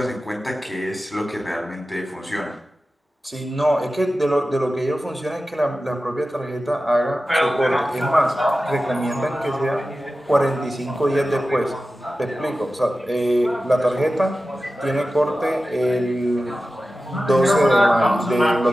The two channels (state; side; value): normal; both; correlation 0.94